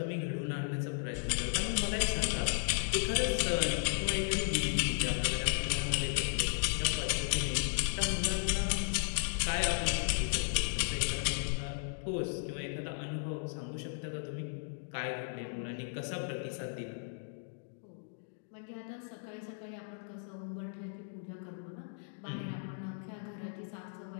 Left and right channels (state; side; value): silent; right; digital silence